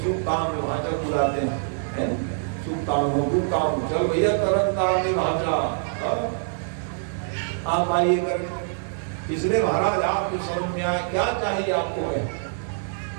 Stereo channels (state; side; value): silent; left; digital silence